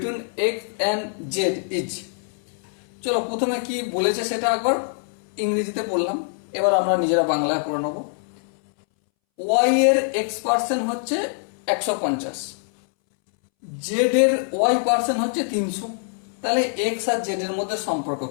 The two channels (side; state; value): right; silent; 63 dB below the other